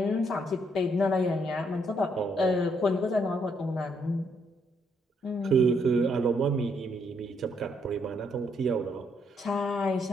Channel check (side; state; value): both; normal; correlation 0.73